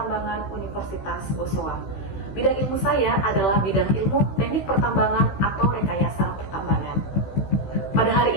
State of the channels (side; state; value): right; late; 16 ms